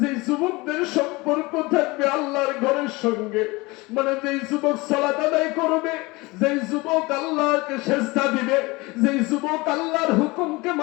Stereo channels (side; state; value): right; quieter; 23.5 dB